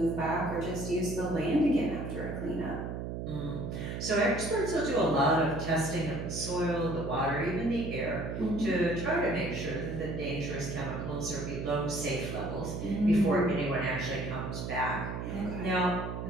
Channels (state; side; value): noise; right; hum, 5 dB below the sound